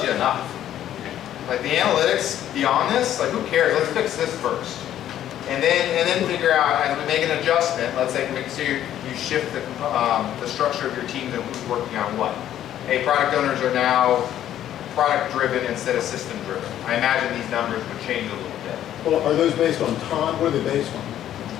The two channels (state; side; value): quieter; right; 11.5 dB